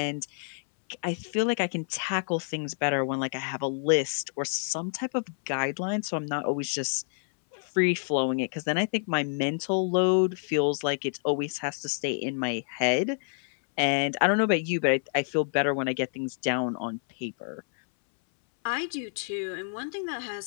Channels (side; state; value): right; silent; 59 dB below the other